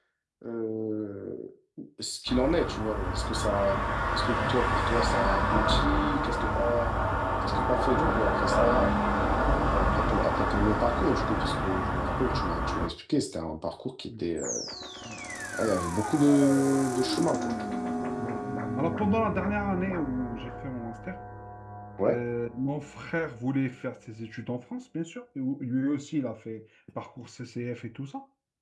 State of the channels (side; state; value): both; identical; correlation 1.00